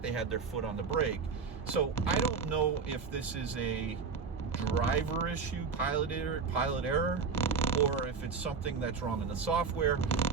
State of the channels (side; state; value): left; quieter; 5.3 dB